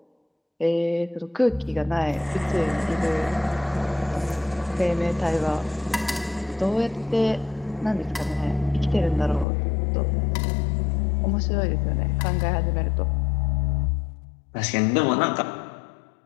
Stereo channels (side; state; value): right; drops out; at 9.5 s